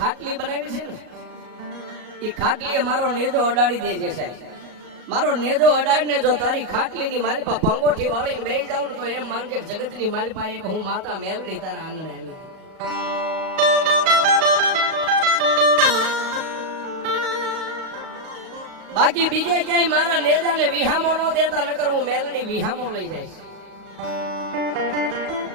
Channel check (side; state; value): left; late; 37 ms